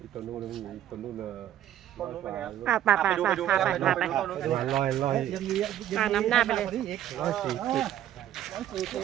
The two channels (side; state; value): left; quieter; 11.7 dB